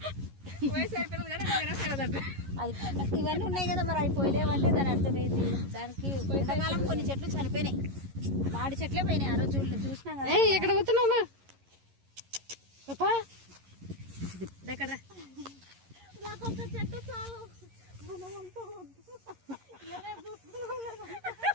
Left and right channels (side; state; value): left; late; 11 ms